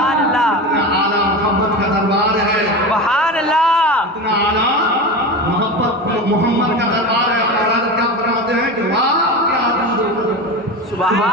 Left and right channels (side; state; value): both; normal; correlation 0.25